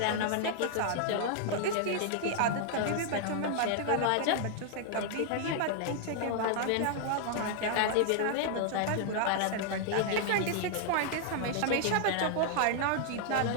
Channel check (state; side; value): different; both; correlation 0.00